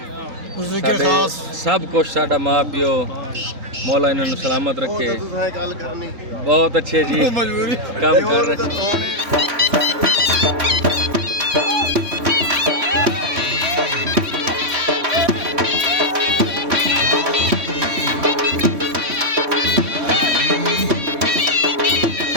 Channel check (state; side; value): late; left; 3.6 ms